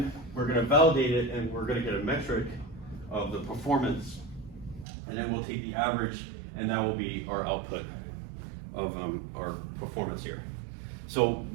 we're going to validate it, and we're going to get a metric of the performance. And then we'll take the average, and that will be our output of our performance here. So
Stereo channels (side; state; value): left; drops out; at 4.9 s